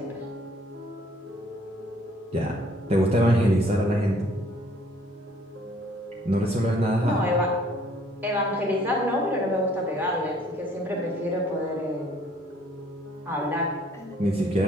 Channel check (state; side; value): normal; both; correlation 0.60